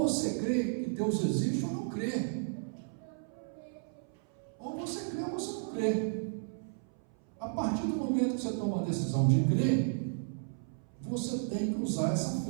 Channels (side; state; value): left; silent; 55 dB below the other